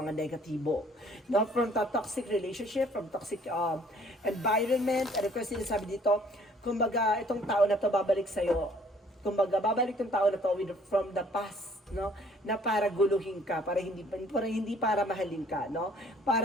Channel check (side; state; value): both; normal; correlation 0.59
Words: negatibo. Not from the toxic relationship, from toxic environment. And of course, sinasabi dito, kumbaga, itong tao na to babalik sa'yo. Kumbaga, babalik yung tao na to from the past, no? Na para guluhin ka, para hindi para mahalin ka, no?